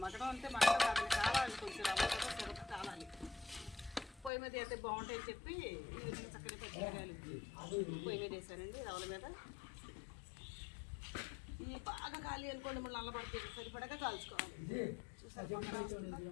అంటే మగడం కాదు, కావాలి కొంచెం రవ్వ కదా సొరక కాలాలి. పొయ్యి మీద అయితే బాగుంటాయని చెప్పి ఈ విధంగా చక్కని పచ్చిమిరకాయలు పొయ్యి మీద వేసానండి రవ్వల మీద. ఈ బాగా కాలి అనుకోండి మళ్ళీ నల్లబడుతుంది, సరిపడగా కాల్చుకోవాలి. చూసారు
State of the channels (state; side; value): drops out; right; at 4.3 s